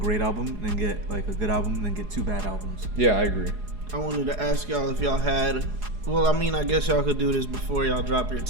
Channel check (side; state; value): left; late; 4.8 ms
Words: album, then get like a good album, then get two bad albums. Yeah, I agree. I wanted to ask y'all if y'all had, well, I mean, I guess y'all could do this before y'all drop your